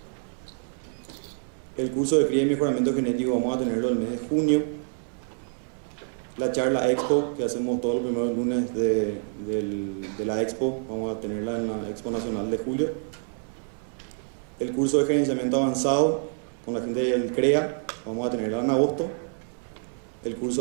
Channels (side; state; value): left; silent; 60 dB below the other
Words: El curso de cría y mejoramiento genético vamos a tenerlo el mes de junio. La charla Expo, que hacemos todos los primeros lunes de la Expo, vamos a tenerla en la Expo Nacional de julio. El curso de gerenciamiento avanzado con la gente del CREA, vamos a tenerla en agosto. El